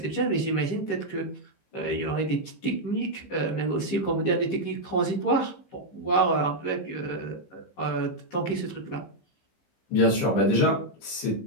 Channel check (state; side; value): late; right; 15 ms